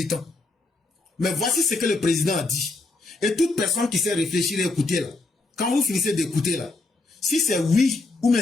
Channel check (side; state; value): right; quieter; 3.3 dB